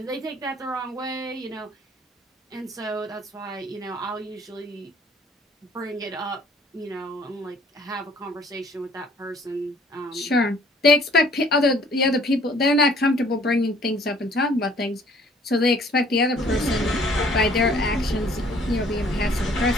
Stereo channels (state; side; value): normal; both; correlation 0.57